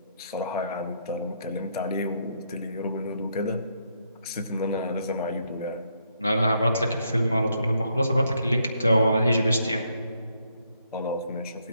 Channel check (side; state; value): both; inverted; correlation -0.74